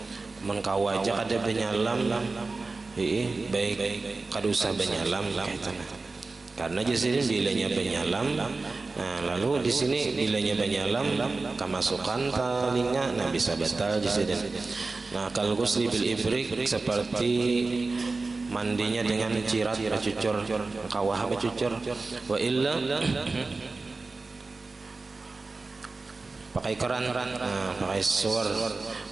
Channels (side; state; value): left; quieter; 3.7 dB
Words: mengkawa aja kada penyalam, baik kada usah penyalam karena di sini bilanya penyalam. Nah, lalu di sini bilanya penyalam kemasukan telinga, nah bisa batal di sini. Nah, kalau ghusli bil ifrik seperti mandinya dengan cirat bercucur, kawah bercucur, wa illa pakai keran, nah, pakai suar,